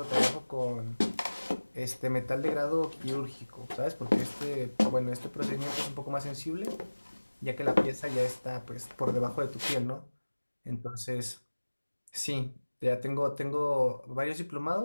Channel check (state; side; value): inverted; both; correlation -1.00